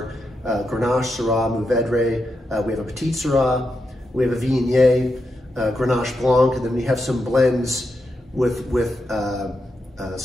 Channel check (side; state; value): both; normal; correlation 0.85